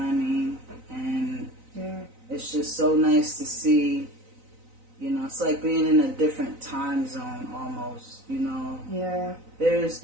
I mean? And Yeah. it's just so nice to see, you know, it's like being in a different time zone almost, you know. Yeah. There's,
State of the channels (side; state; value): left; late; 3.9 ms